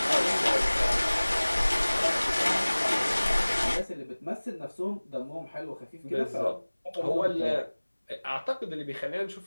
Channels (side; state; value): both; inverted; correlation -1.00